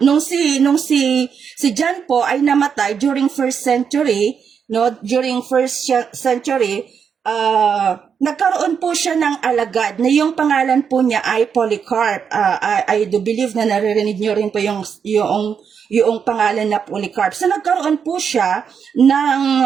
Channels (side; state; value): left; quieter; 6.9 dB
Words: nung si John po ay namatay during first century, no, nagkaroon po siya ng alagad na yung pangalan po niya ay Polycarp. I do believe na naririnig niyo rin po yung pangalan na Polycarp. So nagkaroon po siya